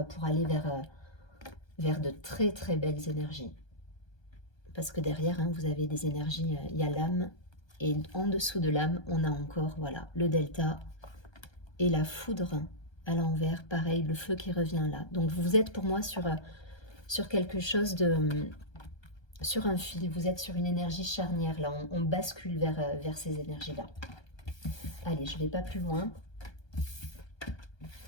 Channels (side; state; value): right; late; 1.3 ms